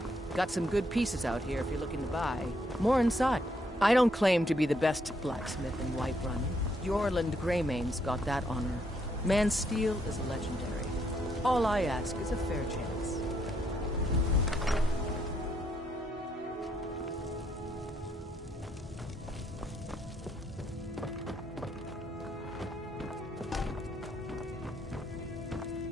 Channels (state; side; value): normal; both; correlation 0.74